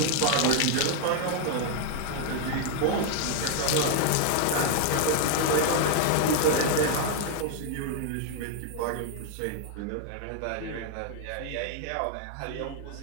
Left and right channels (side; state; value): both; different; correlation 0.00